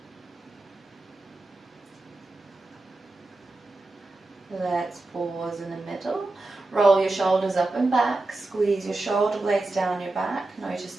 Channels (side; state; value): left; quieter; 3.0 dB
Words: Let's pause in the middle. Roll your shoulders up and back. Squeeze your shoulder blades down your back. Notice